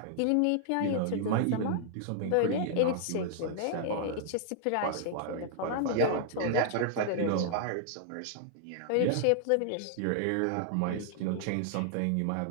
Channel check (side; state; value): both; different; correlation -0.01